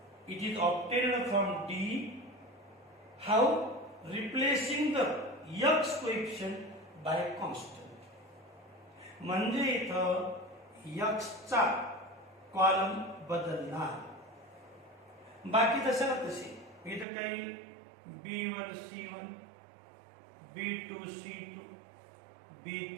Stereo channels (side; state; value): left; drops out; at 17.1 s